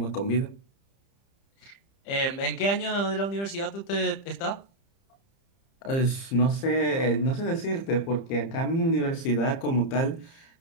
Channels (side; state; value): right; late; 30 ms